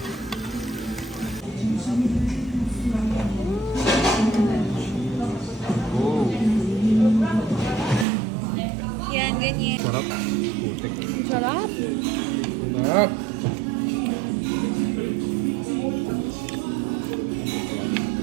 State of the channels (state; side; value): drops out; left; at 8.1 s